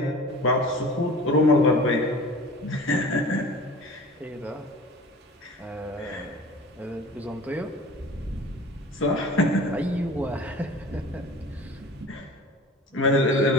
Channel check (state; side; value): normal; both; correlation 0.40